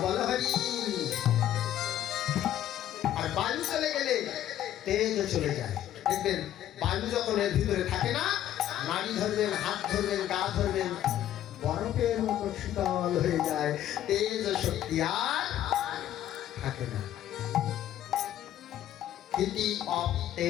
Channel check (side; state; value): right; quieter; 12.0 dB